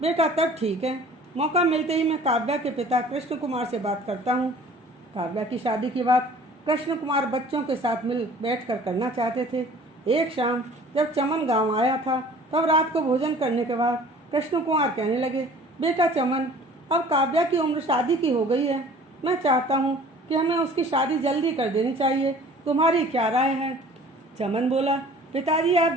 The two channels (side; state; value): both; normal; correlation 0.49